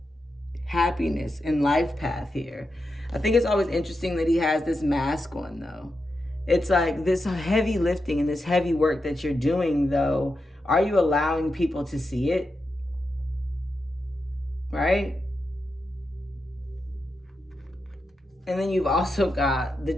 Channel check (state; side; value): normal; both; correlation 0.88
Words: happiness and life path here. I think it's always interesting that he has this mask on, though. It's like this heavy lifting and this heavy work that you're doing, though. Are you allowing people to see it? right? And then you've also got the